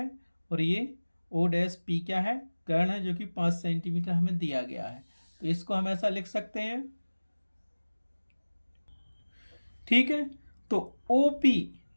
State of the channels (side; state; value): both; inverted; correlation -1.00